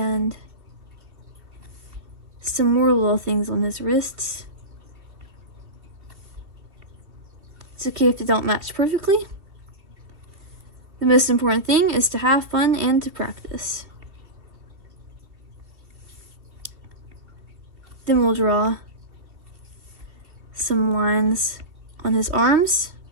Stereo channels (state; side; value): late; left; 2.5 ms